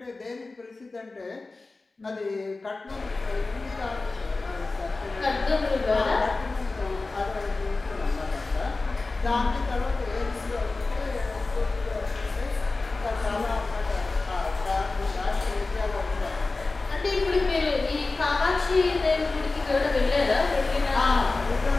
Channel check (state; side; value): quieter; right; 3.5 dB